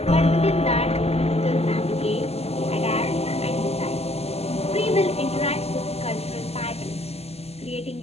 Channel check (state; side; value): late; right; 0.30 ms